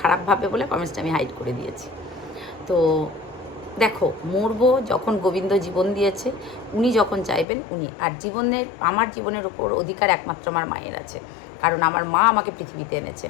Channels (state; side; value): drops out; right; at 7.5 s